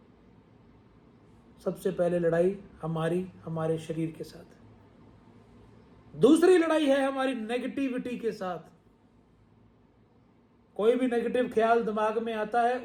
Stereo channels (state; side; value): identical; both; correlation 1.00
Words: सबसे पहले लड़ाई हमारी हमारे शरीर के साथ। दूसरी लड़ाई है हमारी नेगेटिविटी के साथ। कोई भी नेगेटिव ख्याल दिमाग में आता है,